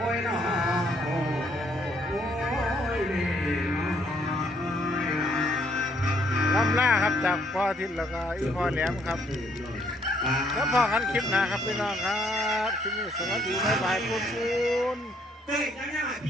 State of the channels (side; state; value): both; normal; correlation 0.68